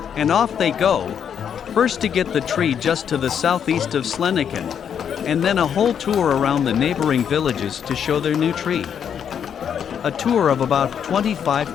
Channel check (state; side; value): quieter; right; 8.2 dB